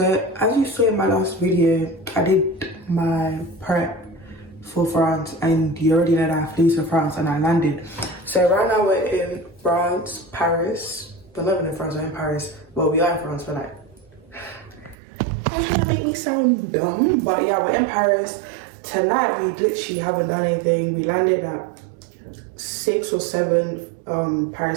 as you saw in my last video, I did my prep for France, and you already know that I flew to France and I landed. So right now we're in France, Paris. We're not even in France, we're in Paris. Well, we are in France, but like, that's gonna make me sound dumb. But yeah, we're in Paris. Tonight we literally haven't done anything. We landed at 6 or 7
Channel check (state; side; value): drops out; left; at 15.0 s